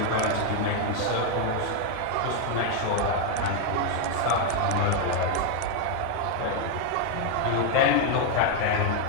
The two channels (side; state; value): both; different; correlation 0.01